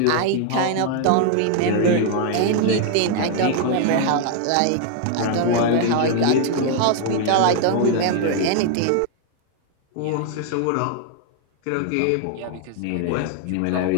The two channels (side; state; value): both; different; correlation 0.00